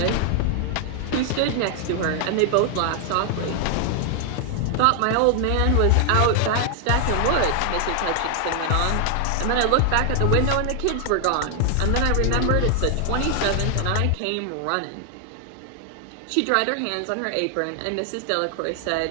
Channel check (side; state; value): both; different; correlation 0.00